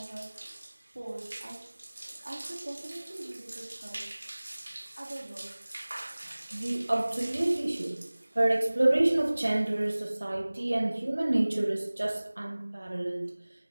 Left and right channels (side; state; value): both; inverted; correlation -1.00